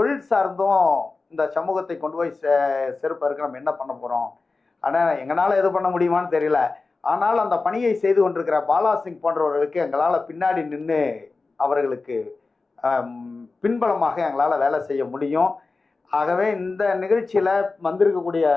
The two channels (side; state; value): right; quieter; 3.9 dB